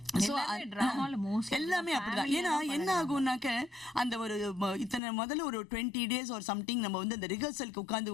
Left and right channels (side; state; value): right; drops out; at 5.0 s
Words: எல்லாமே அப்படிதான். ஏன்னா என்ன ஆகும்னாக்க அந்த ஒரு இத்தனை முதல்ல ஒரு 20 days ஒரு சம்திங் நம்ம வந்து அந்த ரிஹர்சலுக்கு